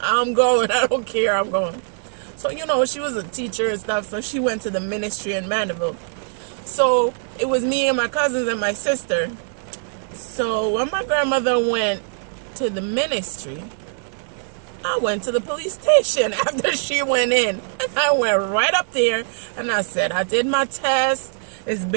don't care. I'm going. So, she was a teacher and stuff, so she went to the ministry in Mandeville. So it was me and my cousins and my sister. So when my grandmother went to the ministry, I went to the police station after she went in. And I went right up there and I said, I did my test. It's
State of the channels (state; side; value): silent; left; digital silence